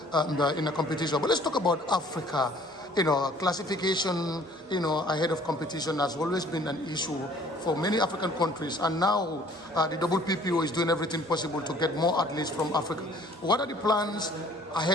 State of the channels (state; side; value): normal; both; correlation 0.55